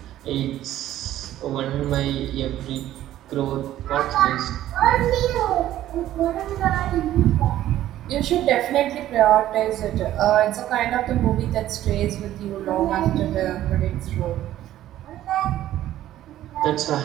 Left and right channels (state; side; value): quieter; left; 13.2 dB